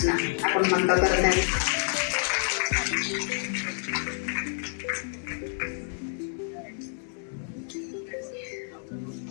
आपण मन करते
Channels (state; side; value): silent; right; digital silence